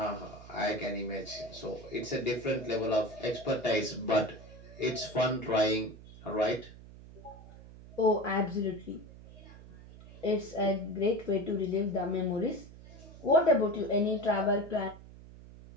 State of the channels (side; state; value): right; noise; hum, 18 dB below the sound